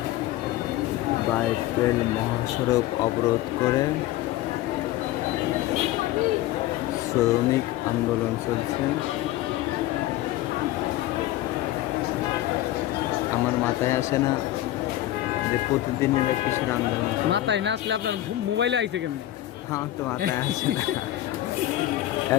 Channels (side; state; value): right; quieter; 14.8 dB